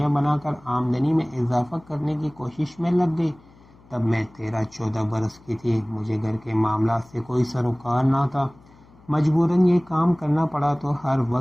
بنا کر آمدنی میں اضافہ کرنے کی کوشش میں لگ گئی۔ تب میں 13-14 برس کی تھی۔ مجھے گھر کے معاملات سے کوئی سروکار نہ تھا۔ مجبوراً یہ کام کرنا پڑا تو ہر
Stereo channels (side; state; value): left; noise; hum, 27 dB below the sound